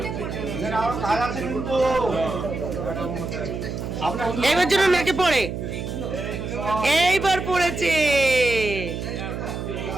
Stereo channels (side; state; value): right; noise; hum, 5 dB below the sound